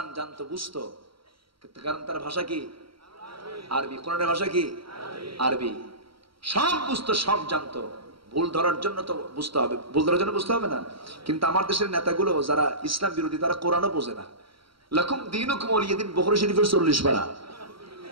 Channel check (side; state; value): left; late; 0.75 ms